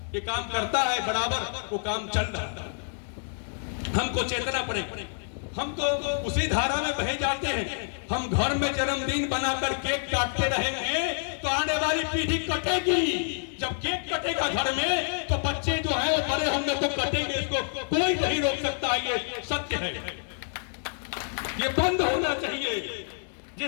ये काम करता है बराबर, वो काम चल रहा है। हमको चेतना पड़े, हम तो उसी धारा में बहे जाते हैं। हम घर में जन्मदिन बनाकर केक काटते रहेंगे तो आने वाली पीढ़ी कटेगी। जब केक कटेगा घर में तो बच्चे जो है वो बड़े होंगे तो कटेंगे, इसको कोई नहीं रोक सकता, ये सत्य है, ये बंद होना चाहिए।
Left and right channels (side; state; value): right; silent; digital silence